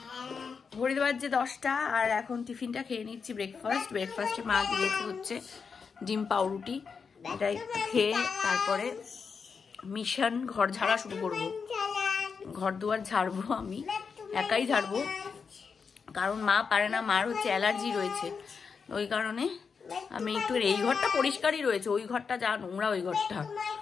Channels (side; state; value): right; quieter; 5.7 dB